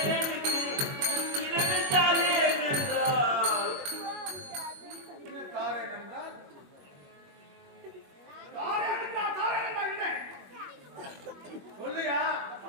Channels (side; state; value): left; late; 21 ms